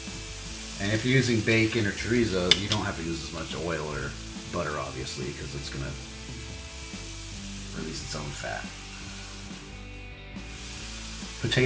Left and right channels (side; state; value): both; identical; correlation 1.00